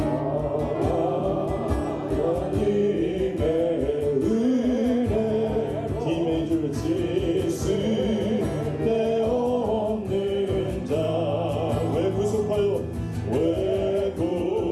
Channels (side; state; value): both; identical; correlation 1.00